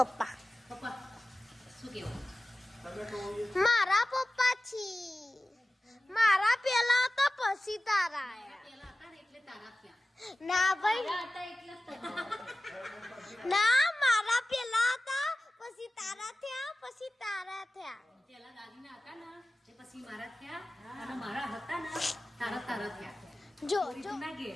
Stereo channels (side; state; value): both; normal; correlation 0.96